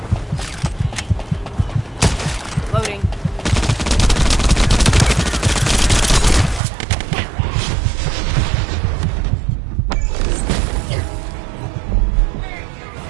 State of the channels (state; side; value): drops out; left; at 6.6 s